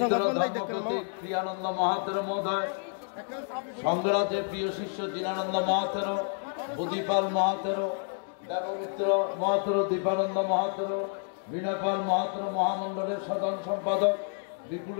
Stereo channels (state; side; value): silent; right; 58 dB below the other